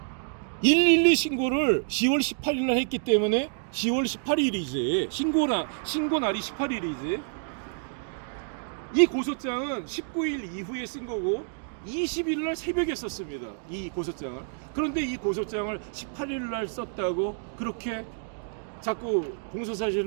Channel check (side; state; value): left; silent; digital silence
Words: 112 신고를 10월 18일 날 했기 때문에 10월 18일이지 신고 날이 18일이지. 이 고소장은 19일 이후에 쓴 거고 20일 날 새벽에 썼습니다. 이 고소장을. 그런데 이 고소장을 18일 날 썼다고 그렇게 자꾸